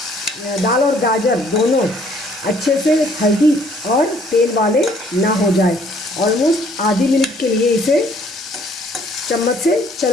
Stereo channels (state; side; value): normal; both; correlation 0.61